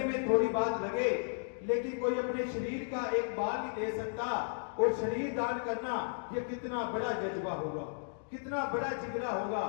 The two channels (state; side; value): silent; right; digital silence